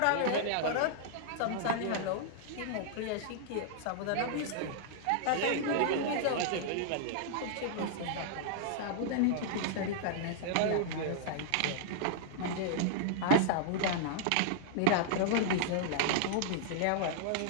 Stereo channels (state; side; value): different; both; correlation -0.01